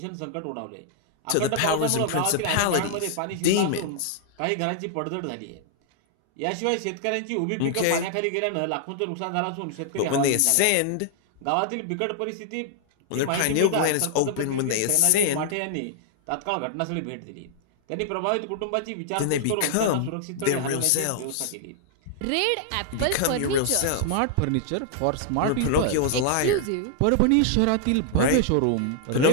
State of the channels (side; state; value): both; different; correlation -0.01